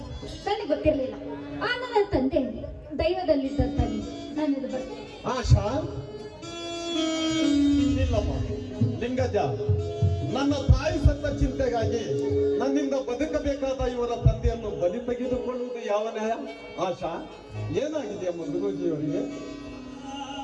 ನನಗೆ ಗೊತ್ತಿರಲಿಲ್ಲ. ಆ ನನ್ನ ತಂದೆ ದೈವದಲ್ಲಿದ್ದಂತಾಗಿ ನಾನು ಇದು ಬರ್ತೀನಿ. ಆಶಾ, ಇಲ್ಲಮ್ಮ ಲಿಂಗಜ್ಜ, ನನ್ನ ತಾಯಿ ಸತ್ತ ಚಿಂತೆಗಾಗಿ ನನ್ನಿಂದ ಬದುಕಬೇಕಾದ ಇವರ ತಂದೆಯನ್ನು ಬಲಿ ತೆಗೆದುಕೊಳ್ಳುವುದು ಯಾವ ನ್ಯಾಯ? ಆಶಾ, ಏನಾಗಿದೆಯಮ್ಮ ಗುರೂಜಿಯವರಿಗೆ?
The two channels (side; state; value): both; identical; correlation 1.00